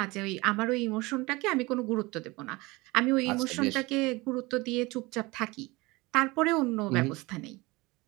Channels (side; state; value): left; quieter; 22.9 dB